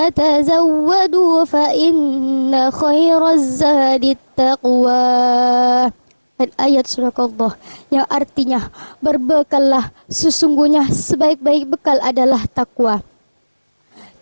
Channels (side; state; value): both; inverted; correlation -1.00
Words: tazawwadu fa inna khairaz zadit taqwa. Dan ayat Sadaqallah yang artinya, berbekallah, sesungguhnya sebaik-baik bekal adalah takwa.